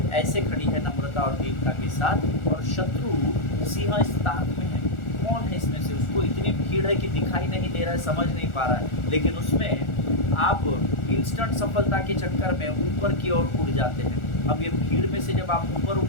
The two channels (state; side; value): late; right; 1.4 ms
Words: ऐसे खड़ी है नम्रता और दीनता के साथ, और शत्रु सिंह इस ताक में है। कौन है इसमें से? उसको इतनी भीड़ है कि दिखाई नहीं दे रहा है, समझ नहीं पा रहा है, लेकिन उसमें आप इंस्टेंट सफलता के चक्कर में ऊपर की ओर उड़ जाते हैं। अब ये भीड़ में से जब आप ऊपर